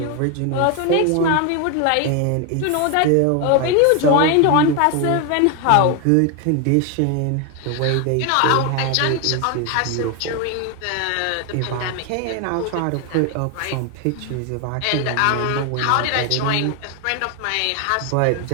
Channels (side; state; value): both; different; correlation 0.01